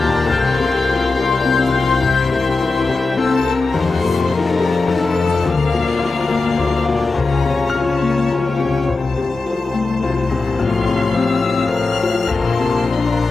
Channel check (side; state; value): right; quieter; 3.6 dB